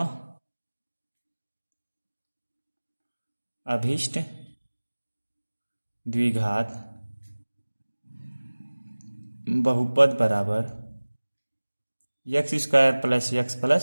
अभीष्ट द्विघात बहुपद बराबर x square plus x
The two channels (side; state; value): both; inverted; correlation -1.00